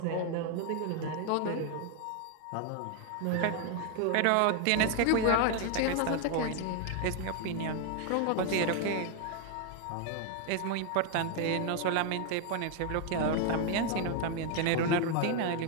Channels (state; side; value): different; both; correlation 0.01